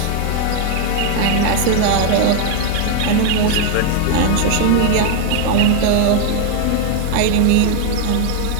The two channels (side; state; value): both; different; correlation 0.00